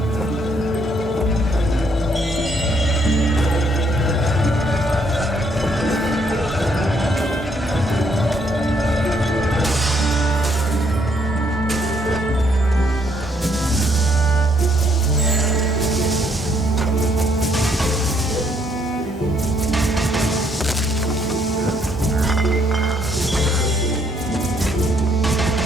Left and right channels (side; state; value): both; normal; correlation 0.70